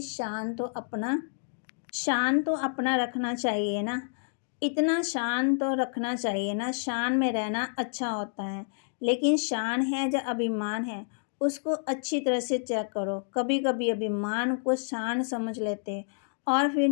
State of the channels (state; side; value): silent; right; digital silence